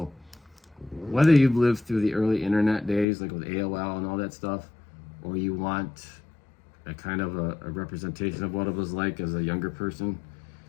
whether you've lived through the early internet days, like with AOL and all that stuff, or you want a kind of a representation of what it was like as a younger person,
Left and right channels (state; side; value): drops out; right; at 3.1 s